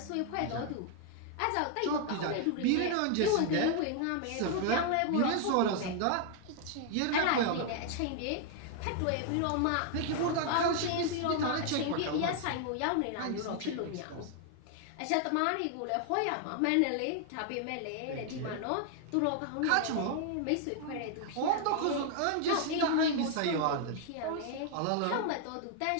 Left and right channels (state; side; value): different; both; correlation 0.00